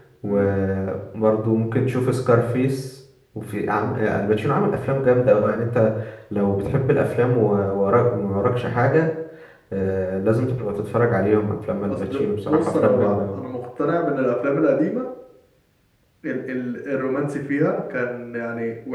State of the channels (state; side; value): identical; both; correlation 1.00